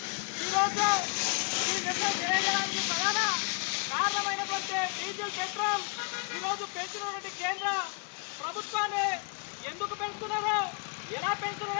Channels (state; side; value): quieter; right; 36.5 dB